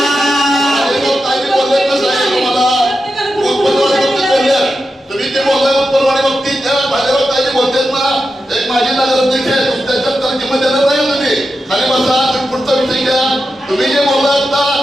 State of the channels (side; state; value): both; normal; correlation 0.89